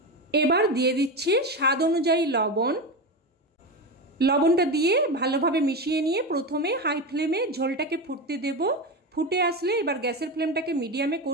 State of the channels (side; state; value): both; normal; correlation 0.18